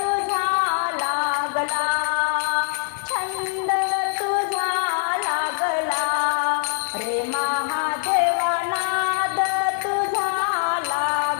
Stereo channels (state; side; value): silent; right; 59 dB below the other